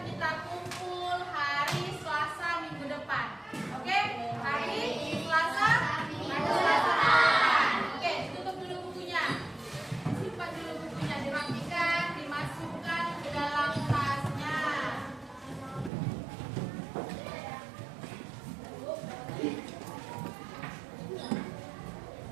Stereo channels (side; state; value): left; drops out; at 15.9 s